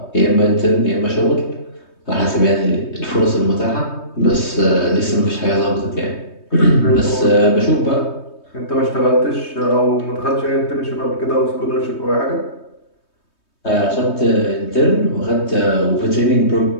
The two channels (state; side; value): late; right; 3.2 ms